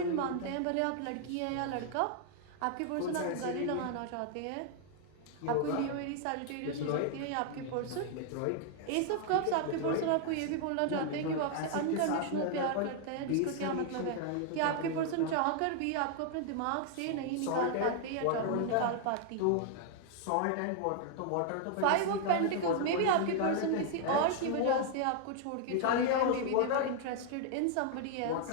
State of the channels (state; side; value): different; both; correlation 0.00